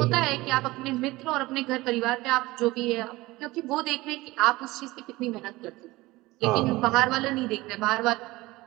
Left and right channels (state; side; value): quieter; left; 19.9 dB